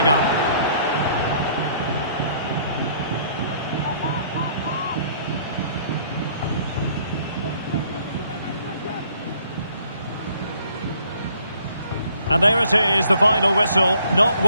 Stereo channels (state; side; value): inverted; both; correlation -0.62